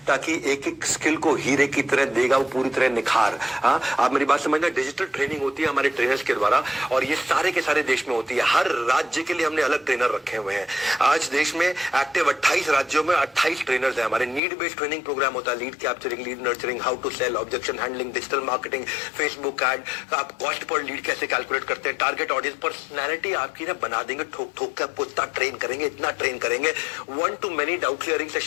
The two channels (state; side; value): drops out; right; at 14.4 s